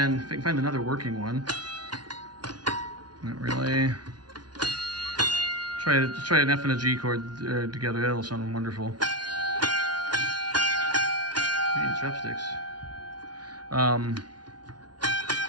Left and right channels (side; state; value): left; late; 0.70 ms